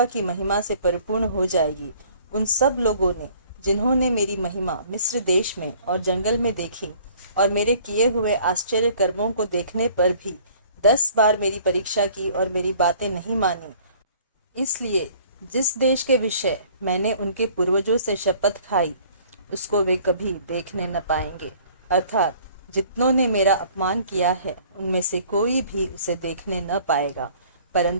की महिमा से परिपूर्ण हो जाएगी। उन सब लोगों ने, जिन्होंने मेरी महिमा मिस्र देश में और जंगल में देखी और मेरे किए हुए आश्चर्य कर्मों को देखने पर भी 10 बार मेरी परीक्षा की और मेरी बातें नहीं मानी, इसलिए जिस देश के विषय मैंने उनके पूर्वजों से शपथ खाई, उसको वे कभी देखने न पाएंगे। अर्थात जितनों ने मेरा अपमान किया है, उनमें से कोई भी उसे देखने न पाएगा,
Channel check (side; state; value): both; inverted; correlation -0.54